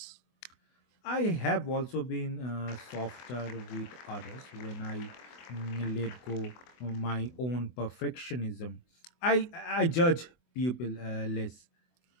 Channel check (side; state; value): right; late; 24 ms